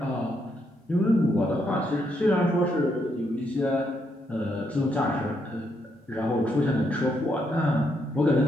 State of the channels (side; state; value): both; normal; correlation 0.77